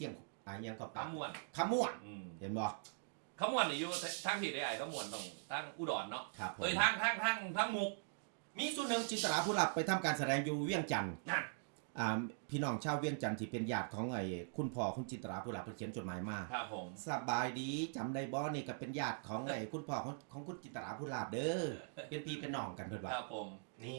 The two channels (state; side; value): silent; left; digital silence